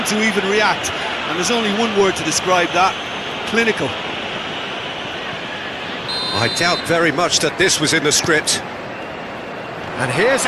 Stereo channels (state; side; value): identical; both; correlation 1.00